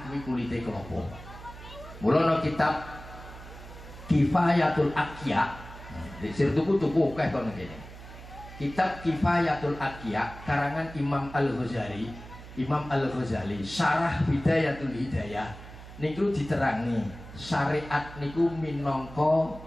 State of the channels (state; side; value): noise; right; hum, 15 dB below the sound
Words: kuwi kulite klopo mula ana kitab Kifayatul Aqya sir tuku-tuku akeh kok ngene kitab Kifayatul Aqya karangan Imam Al-Ghazali syarah Bidayatul Hidayah niku diterangi syariat niku minangka